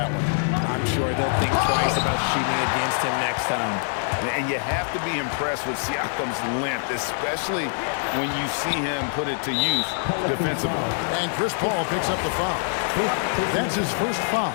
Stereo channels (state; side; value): silent; right; digital silence